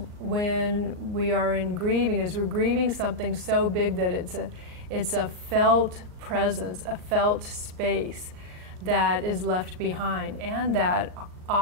when we are in grieving is we're grieving something so big that it's a felt presence, a felt space that is left behind. And that,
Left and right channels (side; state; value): left; late; 38 ms